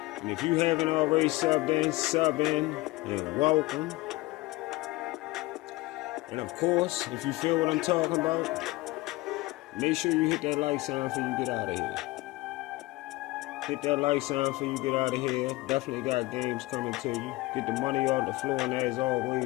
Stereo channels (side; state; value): right; quieter; 20.5 dB